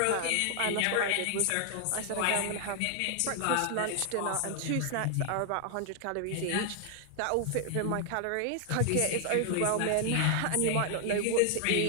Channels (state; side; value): different; both; correlation 0.00